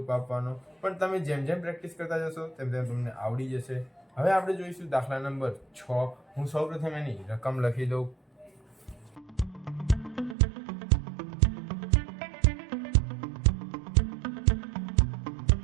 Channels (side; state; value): left; drops out; at 10.4 s